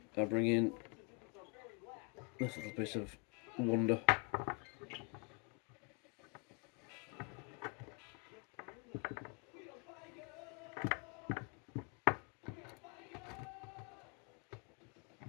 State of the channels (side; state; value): right; quieter; 33.3 dB